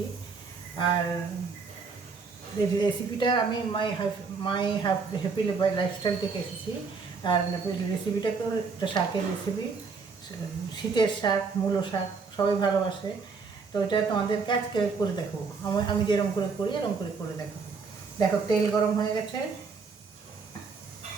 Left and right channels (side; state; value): left; quieter; 4.9 dB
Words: আর রেসিপিটা আমি মাই হ্যাপি লাইফস্টাইল থেকে এসেছি। আর রেসিপিটা তো একটা শাকের রেসিপি, শীতের শাক, মূলো শাক সবাই ভালোবাসে। তো এটা তোমাদেরকে আজকে করে দেখাবো, আমি যেরকম করে করি এরকম করে দেখাবো। দেখো, তেল গরম হয়ে গেছে।